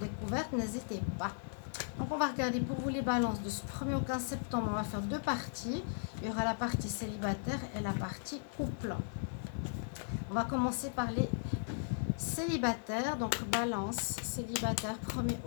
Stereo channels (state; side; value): silent; right; 53 dB below the other